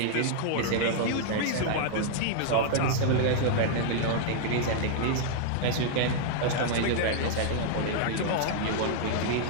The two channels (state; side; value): different; both; correlation -0.01